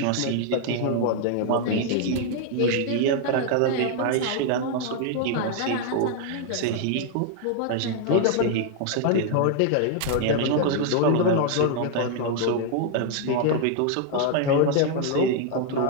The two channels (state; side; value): different; both; correlation 0.00